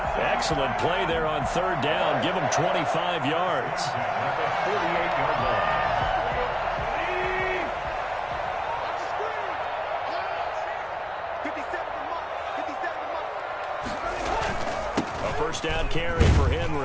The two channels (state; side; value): identical; both; correlation 1.00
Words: Excellent play there on 3rd down. Give him 25 yards. 48-yard line. A first down carry for